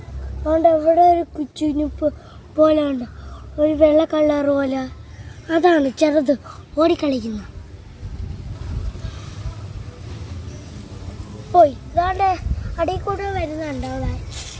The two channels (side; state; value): both; identical; correlation 1.00